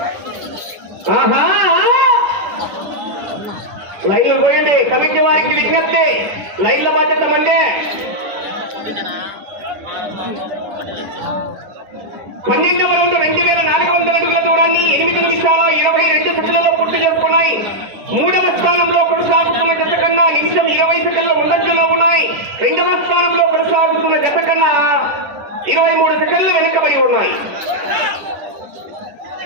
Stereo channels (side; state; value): left; late; 10 ms